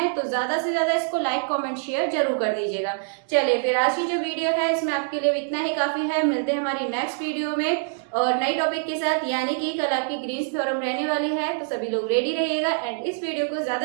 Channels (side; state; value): left; silent; digital silence